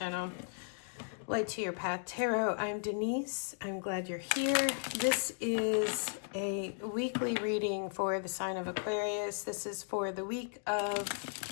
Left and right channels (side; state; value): right; silent; digital silence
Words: Light to Your Path Tarot. I'm Denise. I'm glad you're here. This is a weekly reading for the sign of Aquarius. This is for the week of